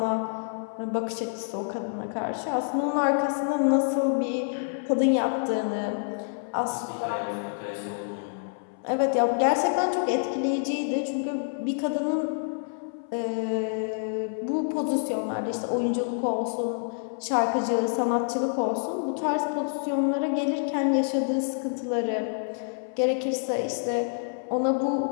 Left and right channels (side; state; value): right; silent; 60 dB below the other